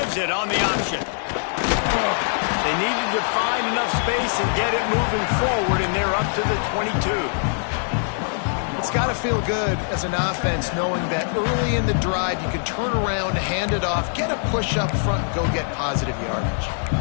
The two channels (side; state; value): right; silent; 64 dB below the other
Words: it on the option. They needed to find enough space and get it moving forward, and they're up to the 22. It's got to feel good as an offense knowing that early in the drive you can turn around, hand it off, get a push up front, and go get positive yardage.